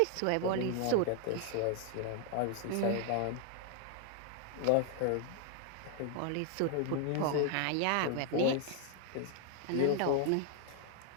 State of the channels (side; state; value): both; different; correlation 0.00